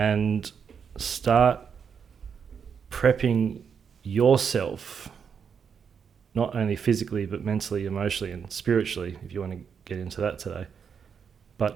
start prepping yourself, not only physically, but mentally, emotionally, and spiritually, if you want to get into that today,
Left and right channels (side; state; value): left; quieter; 6.8 dB